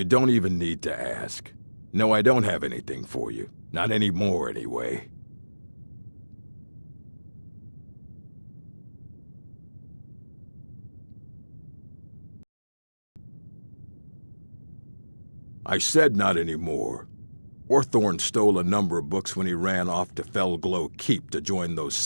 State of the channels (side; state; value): both; inverted; correlation -1.00